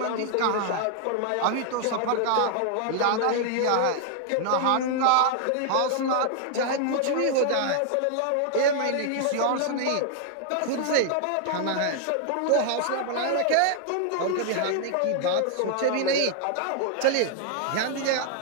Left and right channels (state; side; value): different; both; correlation 0.00